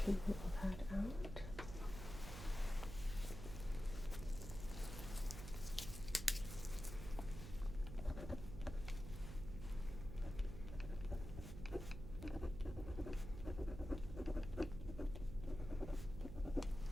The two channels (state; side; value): noise; right; hum, 8 dB below the sound